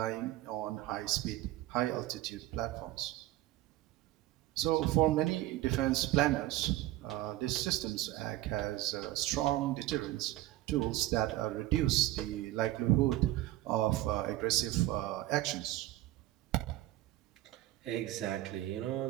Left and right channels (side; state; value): left; quieter; 15.8 dB